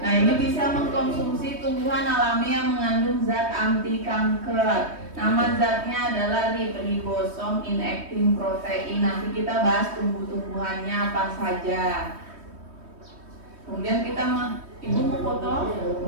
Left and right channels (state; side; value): late; left; 3.2 ms